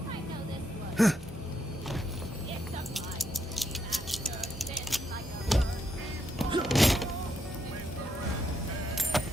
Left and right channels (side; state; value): both; normal; correlation 0.78